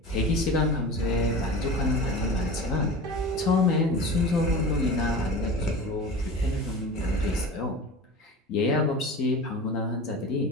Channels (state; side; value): normal; both; correlation 0.33